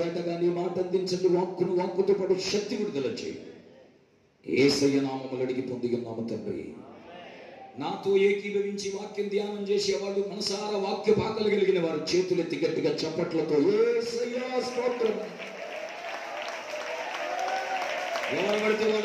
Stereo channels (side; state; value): both; identical; correlation 1.00